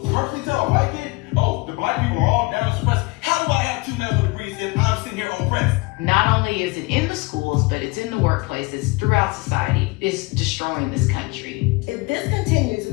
purposely tell a white kid, oh, the black people are all down and suppressed? How do I have 2 medical degrees if I'm sitting here oppressed? Not only is it in the schools, but it's in the workplaces, throughout society. It's destroying this country. If this continues,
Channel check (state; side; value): quieter; right; 24.6 dB